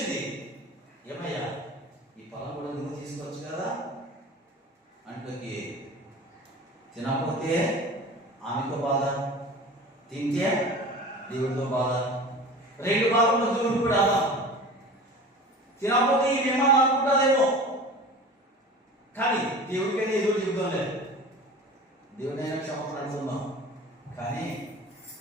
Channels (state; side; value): normal; both; correlation 0.37